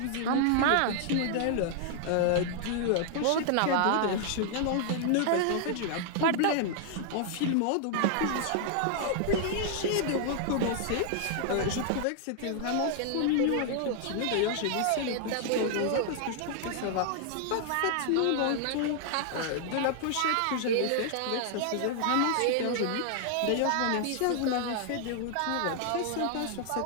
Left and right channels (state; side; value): different; both; correlation 0.00